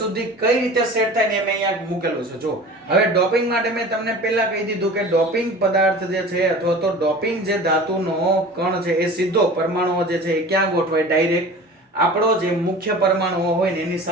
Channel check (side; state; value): both; normal; correlation 0.39